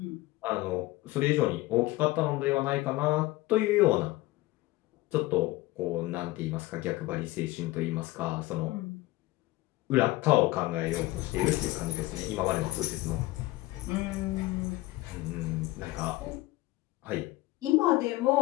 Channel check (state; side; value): quieter; right; 18.9 dB